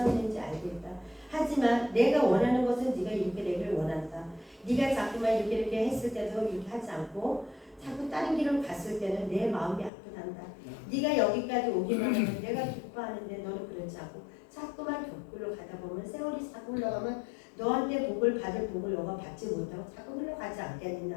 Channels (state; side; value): drops out; right; at 9.9 s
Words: 있는지 알겠다. 하지만 내가 원하는 것은 네가 이렇게 되기를 원한다. 네가 자꾸만 이렇게 했을 때도 이렇게 하지 않고 자꾸 다른 길을 갔을 때는 내 마음이 아프단다. 네가 여기까지 오기만 하면 내가 기뻐하는데 너는 그렇지 않고 자꾸만 격굴로 가다 보면 세월이 자꾸 흘러가면 너한테 복을 받을 복을 너가 받지 못하고 자꾸 흘러가지